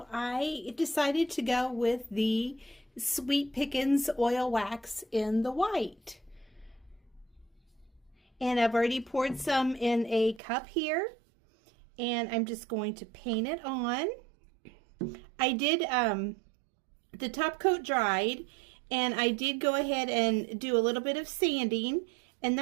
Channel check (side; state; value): left; drops out; at 10.4 s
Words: I decided to go with the Sweet Pickins oil wax in the white. And I've already poured some in a cup here, and I'm just going to paint it on. I did, the top coat dried, and I did go ahead and do a little bit of sanding, and